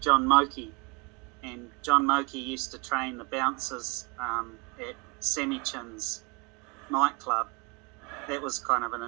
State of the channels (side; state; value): left; quieter; 30.1 dB